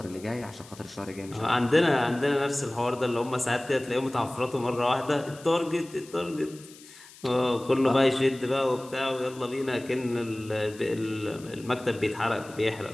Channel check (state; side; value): noise; left; hiss, 21 dB below the sound